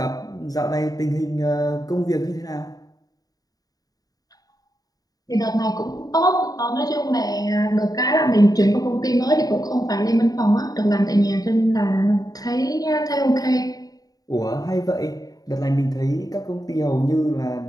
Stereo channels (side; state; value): right; late; 0.18 ms